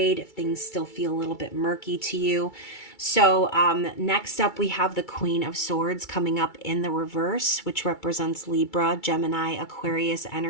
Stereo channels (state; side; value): late; right; 2.3 ms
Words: if things still feel a little bit murky to you. So next up, we have the Queen of Swords coming up in the reverse, which represents Libra, Gemini, Aquarius